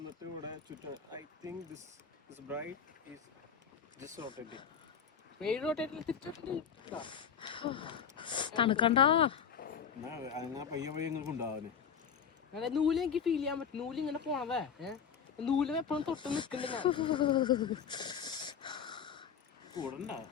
ഇവിടെ ചുറ്റും I think this bright is just rotating. പേര് റൊട്ടേറ്റിൽ തിരിച്ചിട്ടുണ്ട്. തണുക്കണ്ട അങ്ങനെ പയ്യെ പയ്യെ നിങ്ങൾക്ക് ഉണ്ടാവാന് അങ്ങനെ നൂല് എനിക്ക് ഫീൽ ചെയ്യാൻ പറ്റും. നൂല് ഇങ്ങനെ പോണതേ നൂല് എപ്പോഴും തൊട്ട് നിക്കണ്ട ഞാൻ കൂടണ്ട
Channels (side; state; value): right; quieter; 7.2 dB